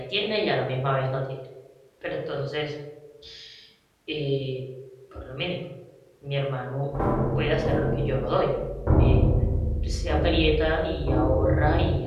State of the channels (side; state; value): both; identical; correlation 1.00